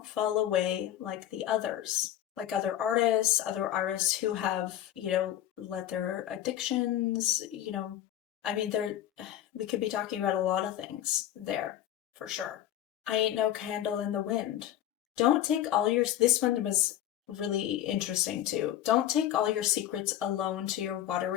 fall away like the others. like other artists who have, let their addictions, I mean, we could be talking about a lot of things there for sure. I ain't no candle in the wind. Don't take all your, this one was really interesting too. Don't take all your secrets alone to your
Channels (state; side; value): quieter; right; 12.1 dB